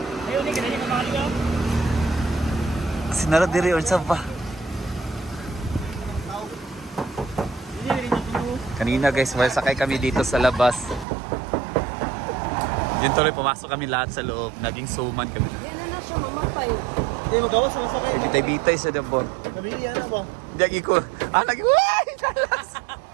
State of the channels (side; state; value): left; drops out; at 11.1 s